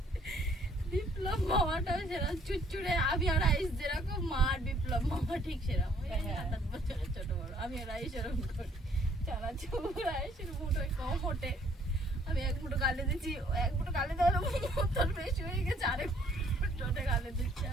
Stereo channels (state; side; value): normal; both; correlation 0.63